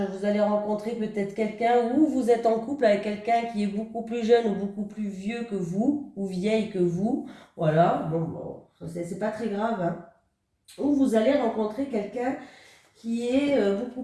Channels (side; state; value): both; identical; correlation 1.00